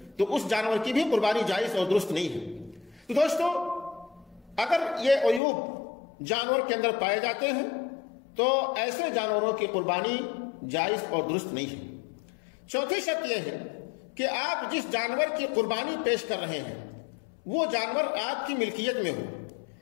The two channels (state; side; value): drops out; right; at 5.4 s